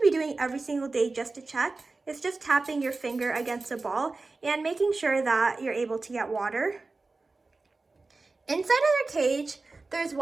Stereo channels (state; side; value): quieter; left; 3.6 dB